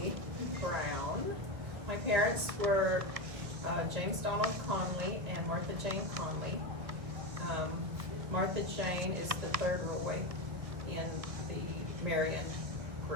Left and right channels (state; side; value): late; left; 1.6 ms